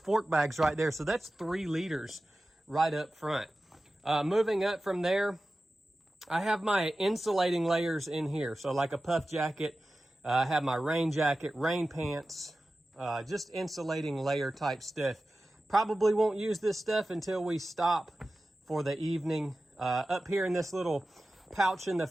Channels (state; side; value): normal; both; correlation 0.95